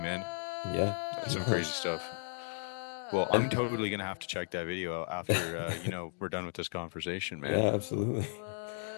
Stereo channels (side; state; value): right; silent; digital silence